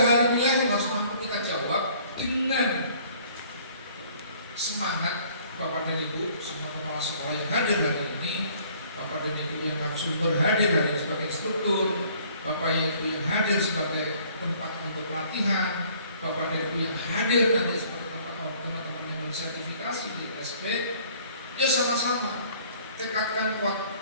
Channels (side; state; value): both; inverted; correlation -0.57